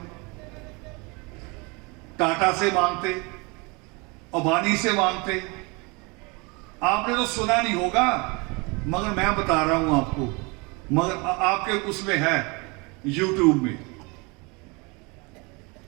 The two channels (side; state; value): left; quieter; 28.3 dB